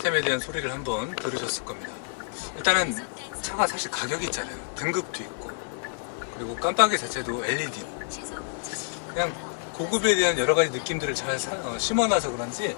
대한 소리를 한번 들으셨을 겁니다. 일단은 차가 사실 가격이 있잖아요. 등급도 있고, 그리고 깜빡이 자체도 LED. 그냥 고급에 대한 여러 가지 느낌들을 잘 심어놔서 그런지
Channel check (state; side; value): silent; right; 60 dB below the other